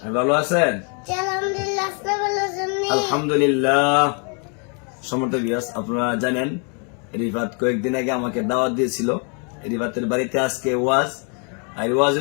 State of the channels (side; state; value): right; quieter; 38.0 dB